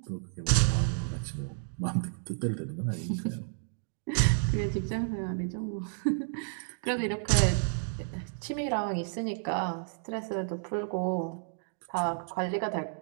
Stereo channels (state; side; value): silent; left; digital silence